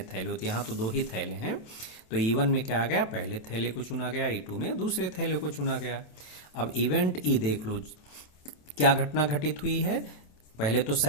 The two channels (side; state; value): right; late; 27 ms